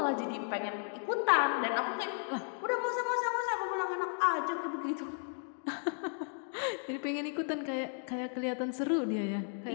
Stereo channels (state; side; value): silent; right; 55 dB below the other